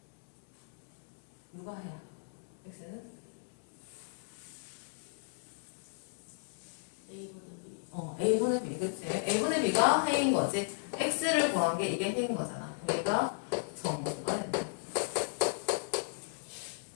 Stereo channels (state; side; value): silent; right; digital silence